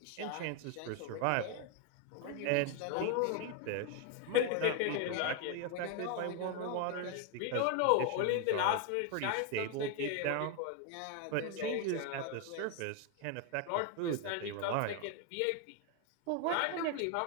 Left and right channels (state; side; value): different; both; correlation 0.01